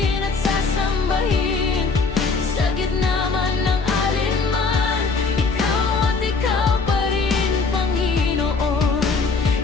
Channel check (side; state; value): right; quieter; 4.4 dB